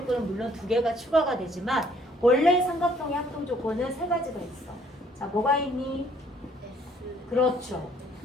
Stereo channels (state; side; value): normal; both; correlation 0.62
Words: 물론 두 개가 추가가 되지만 원래 삼각형의 합동 조건은 세 가지가 있어. 자, 뭐가 있니? 그렇죠.